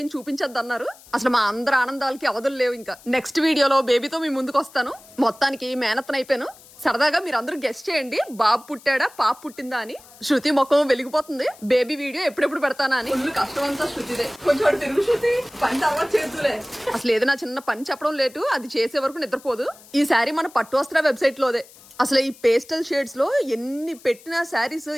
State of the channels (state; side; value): noise; left; hiss, 23 dB below the sound